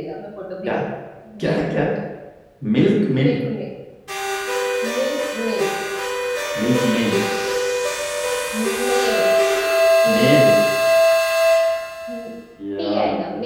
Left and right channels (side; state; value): both; identical; correlation 1.00